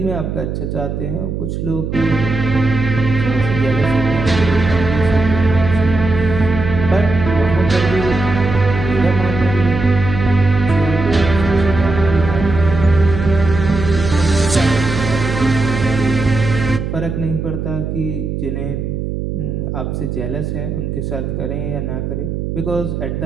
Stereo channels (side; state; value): right; noise; hum, 4 dB below the sound